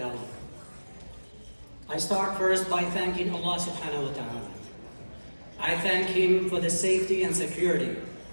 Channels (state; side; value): inverted; both; correlation -1.00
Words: I start first by thanking Allah subhanahu wa ta'ala. I thank Him for the safety and security